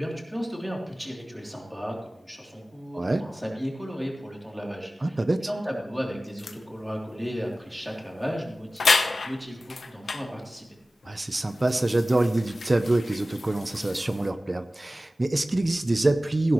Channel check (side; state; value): both; normal; correlation 0.96